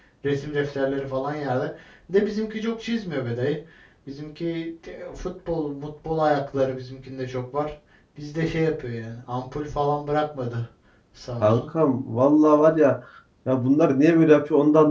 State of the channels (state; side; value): identical; both; correlation 1.00